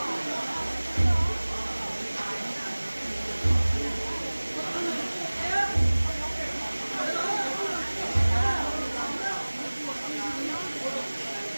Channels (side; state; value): both; inverted; correlation -1.00